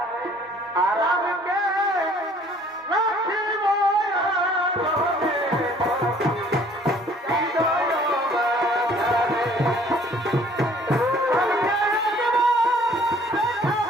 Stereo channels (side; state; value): both; normal; correlation 0.56